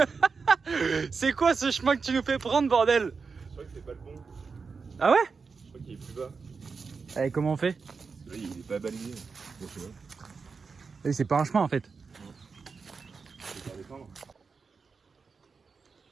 C'est quoi ce chemin que tu nous fais prendre, bordel? Je crois que c'est pas le bon. Ah ouais? Je crois qu'il est plus bas. Allez, comment on fait? Là, il est pas balayé. Bon, je sais pas. C'est pas un chemin en fait. Je vais faire descendre.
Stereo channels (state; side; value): quieter; left; 5.0 dB